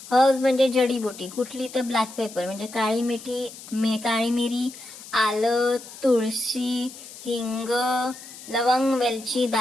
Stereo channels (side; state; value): left; noise; hiss, 16 dB below the sound